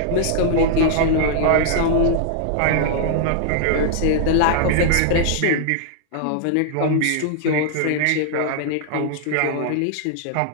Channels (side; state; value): both; different; correlation -0.01